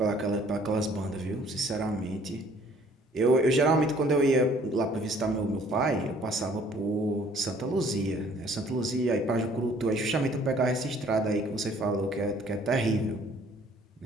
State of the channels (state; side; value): normal; both; correlation 0.57